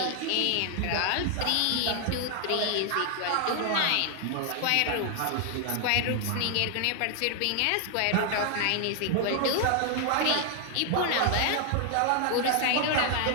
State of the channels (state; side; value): different; both; correlation 0.00